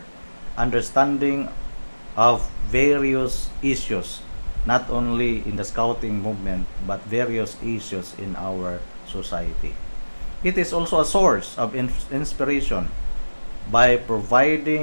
understanding of various issues, not only in the scouting movement but various issues in our society. It is also a source of inspiration by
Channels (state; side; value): inverted; both; correlation -1.00